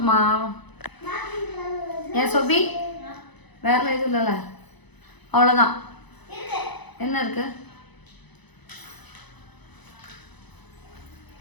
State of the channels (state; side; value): late; right; 0.99 ms